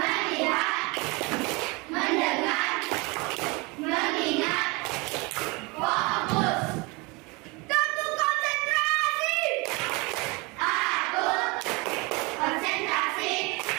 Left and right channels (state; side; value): quieter; left; 26.8 dB